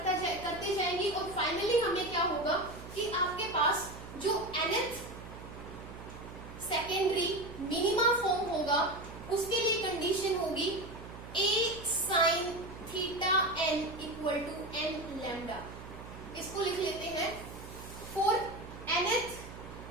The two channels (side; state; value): right; noise; hum, 13 dB below the sound